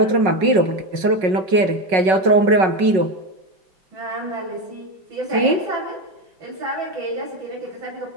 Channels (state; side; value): late; left; 5.4 ms